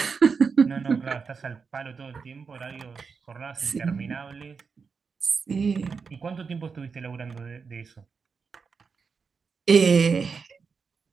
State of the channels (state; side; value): quieter; left; 5.4 dB